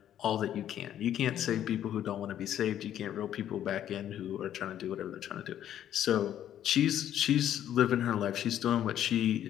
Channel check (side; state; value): right; quieter; 10.9 dB